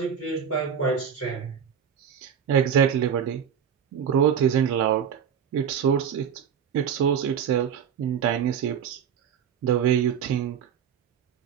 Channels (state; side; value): quieter; left; 8.0 dB